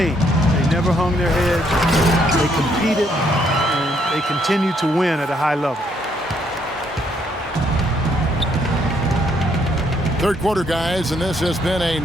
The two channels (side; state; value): both; normal; correlation 0.71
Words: They never hung their heads. They competed, and they continued to win at a high level. Third quarter, guys, and this has been a